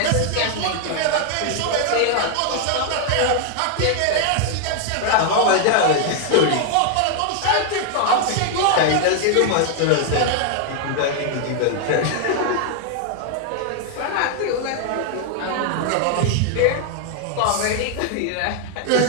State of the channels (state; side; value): different; both; correlation 0.00